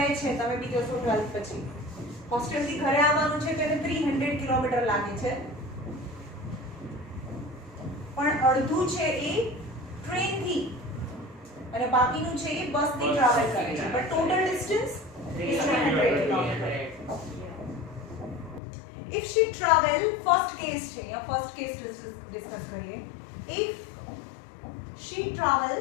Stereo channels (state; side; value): drops out; right; at 18.6 s